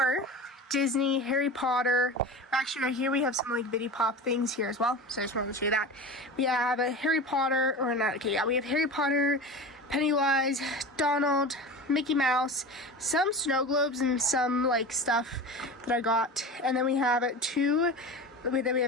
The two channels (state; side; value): normal; both; correlation 0.30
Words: Disney, Harry Potter. Actually, right here we have some like Funko Pop things here as well. So I just wanted to show you that. We have a Harry Potter, or not, okay, yeah, we have Harry Potter, Pennywise, Donald, Mickey Mouse, some snow globes, and some like stuff that I got. And then we have then we